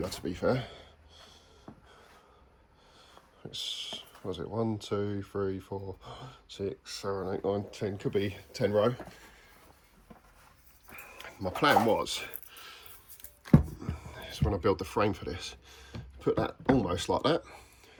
to be fair. It's, what was it, 1, 2, 3, 4, 6, 7, 8, 9, 10, could be 10 row. My plan was, when I build the frame for this, put that almost like that.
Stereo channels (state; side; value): identical; both; correlation 1.00